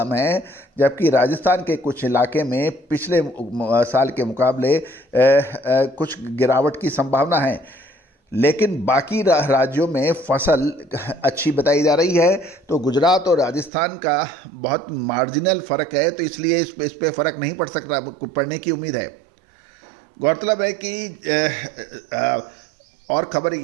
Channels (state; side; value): drops out; left; at 13.7 s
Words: है, जबकि राजस्थान के कुछ इलाके में पिछले साल के मुकाबले कुछ गिरावट की संभावना है। लेकिन बाकी राज्यों में फसल अच्छी बताई जा रही है। तो गुजरात और राजस्थान का बहुत मार्जिनल फ़र्क है, तो इसलिए इस पे फ़र्क नहीं पड़ सकता, पड़ने की उम्मीद है। गौरतलब है कि और खबर